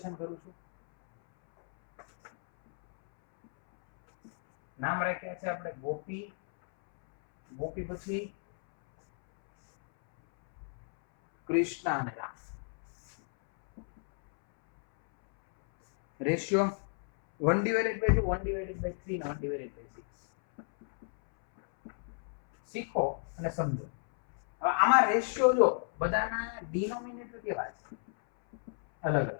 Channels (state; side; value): silent; right; 57 dB below the other